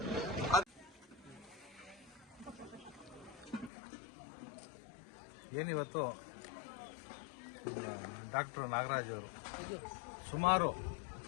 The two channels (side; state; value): right; drops out; at 3.7 s